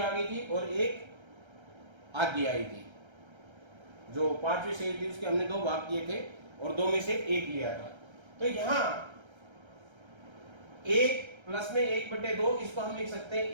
गई थी और एक आधी आई थी। जो 5वीं सेब थी उसके हमने 2 भाग किए थे और 2 में से 1 लिया था। तो यहाँ 1 प्लस में 1/2, इसको हम लिख सकते हैं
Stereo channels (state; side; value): late; left; 1.3 ms